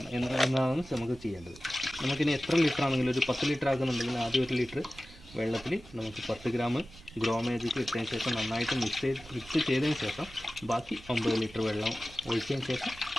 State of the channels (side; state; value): right; noise; rumble, 21 dB below the sound